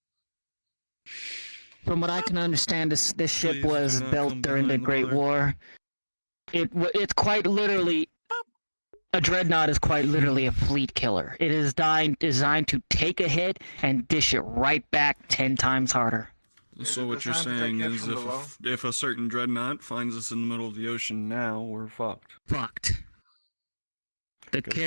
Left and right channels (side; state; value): both; inverted; correlation -1.00